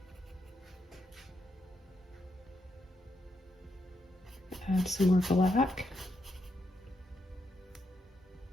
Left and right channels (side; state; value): both; normal; correlation 0.80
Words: Add some more black.